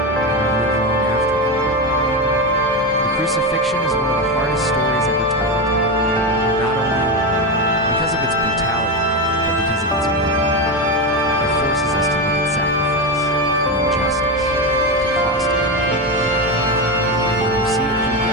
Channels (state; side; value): normal; both; correlation 0.15